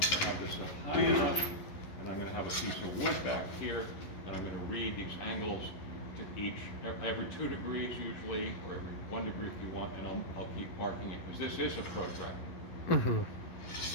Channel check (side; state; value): right; late; 11 ms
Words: have this high enough, and I'm going to have a piece of wood back here, and I'm going to read these angles to each, every 2 degrees usually, or every 1 degree if you want, and I'll keep marking it, because this is a protractor.